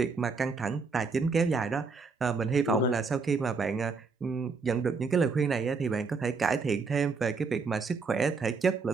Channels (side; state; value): left; quieter; 4.6 dB